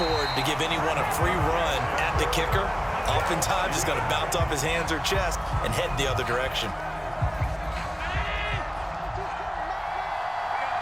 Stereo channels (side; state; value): both; identical; correlation 1.00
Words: to give anyone a free run at the kicker. Oftentimes, he's going to bounce off his hands or chest and head the other direction.